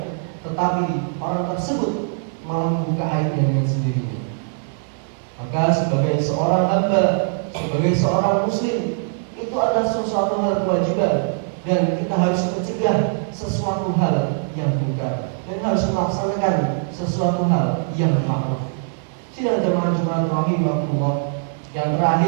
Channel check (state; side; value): silent; left; digital silence